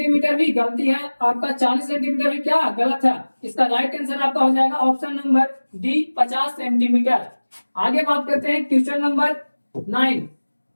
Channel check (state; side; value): inverted; both; correlation -1.00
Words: भी गलती है, आपका 40 सेंटीमीटर भी क्या गलत है। इसका राइट आंसर आपका हो जाएगा ऑप्शन नंबर डी 50 सेंटीमीटर। आगे बात करते हैं क्वेश्चन नंबर 9।